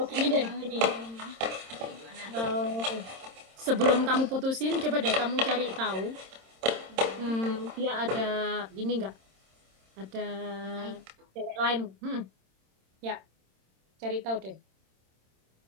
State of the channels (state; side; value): late; left; 26 ms